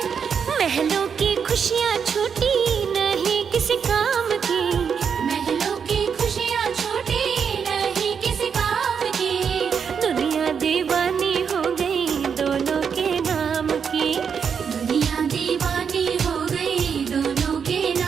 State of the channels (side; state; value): left; quieter; 6.8 dB